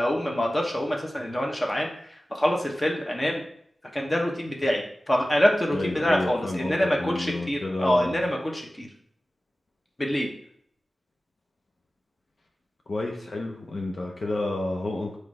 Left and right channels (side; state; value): both; normal; correlation 0.96